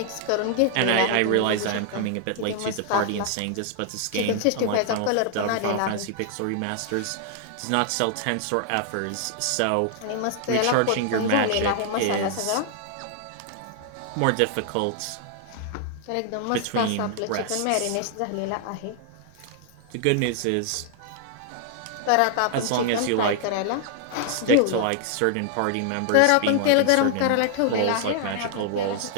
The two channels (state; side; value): different; both; correlation 0.00